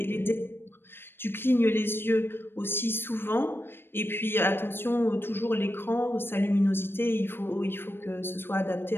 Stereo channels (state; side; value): late; right; 0.10 ms